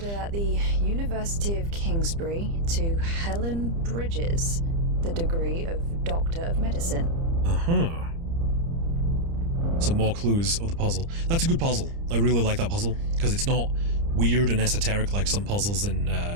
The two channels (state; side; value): late; left; 30 ms